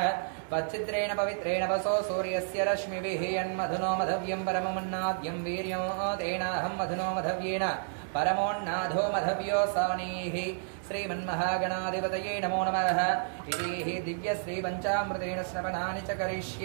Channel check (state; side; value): silent; left; 57 dB below the other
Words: त्वच्चित्रेण पवित्रेण वसो सूर्यस्य रश्मिभिः यन्मधुनो मधव्यं परममन्नाद्यं वीर्यो तेनाहं मधुनो मधव्येन परमोन्नाधो मधव्यो सानीः श्रीमन्महागणाधिपतये नमो नमः इति दिव्यश्रीपञ्चामृतेन स्नपनानि च